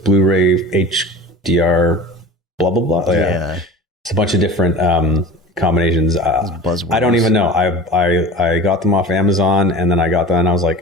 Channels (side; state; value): both; normal; correlation 0.37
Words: Blu-ray HDR blah, blah, blah? Yeah. It's a bunch of different combinations. I don't even know. I got them off Amazon, and then I got them and I was